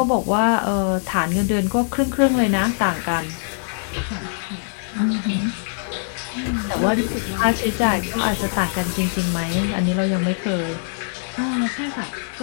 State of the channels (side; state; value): right; silent; digital silence